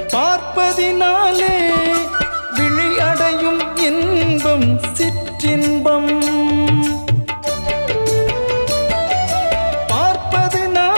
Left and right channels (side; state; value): both; inverted; correlation -1.00